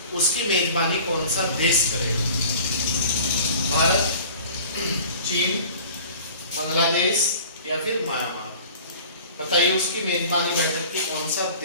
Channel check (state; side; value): inverted; both; correlation -0.44